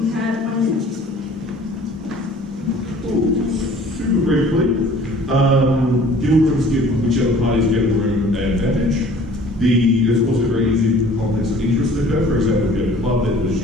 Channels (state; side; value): normal; both; correlation 0.51